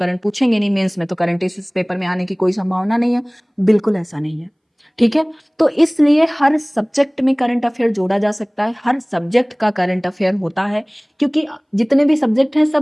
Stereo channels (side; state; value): both; identical; correlation 1.00